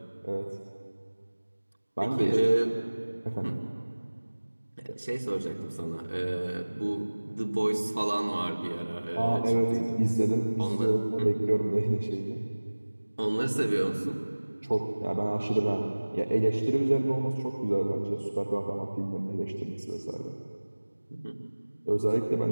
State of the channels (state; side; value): inverted; both; correlation -1.00